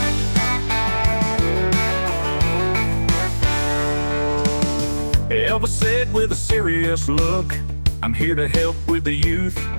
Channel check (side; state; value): both; inverted; correlation -1.00